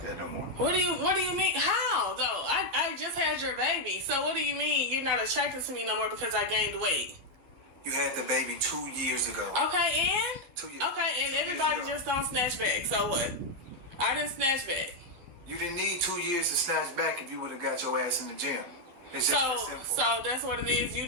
that no more. What do you mean? How though? I just had your baby, so what do you mean you're not attracted to me no more because I gained weight? You had the baby 2 years ago. Okay, and 2 years. Okay, and everybody just don't snatch back. So what? I didn't snatch back. You didn't need 2 years to snatch back if you would have got your ass in the gym. It's just that simple. So that's what it is. You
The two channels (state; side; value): late; left; 11 ms